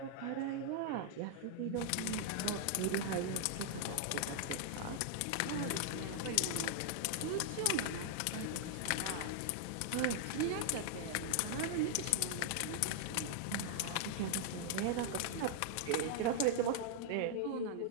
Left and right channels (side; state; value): both; different; correlation -0.01